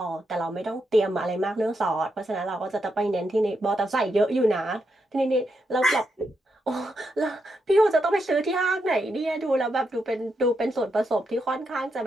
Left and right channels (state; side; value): normal; both; correlation 0.83